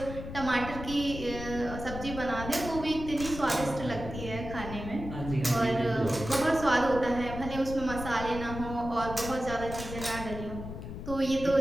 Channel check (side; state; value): left; noise; rumble, 9 dB below the sound